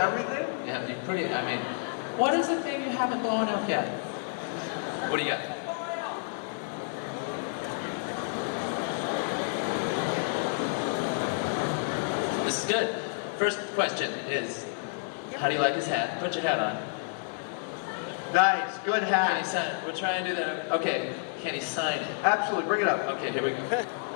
Yeah, you what is the thing you haven't blown up yet? What do you got? This is good. First question is, how do you like his hat? Put your hat on. Nice, good Can he hat. sign it? We'll try and do that. Okay, can he sign it? Absolutely, bring it up. Okay, here we go.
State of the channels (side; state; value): right; silent; 58 dB below the other